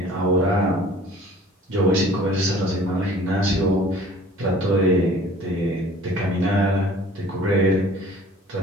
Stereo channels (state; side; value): normal; both; correlation 0.49